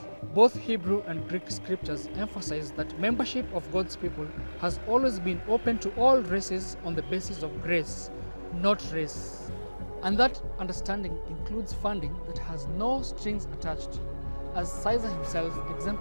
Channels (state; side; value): inverted; both; correlation -1.00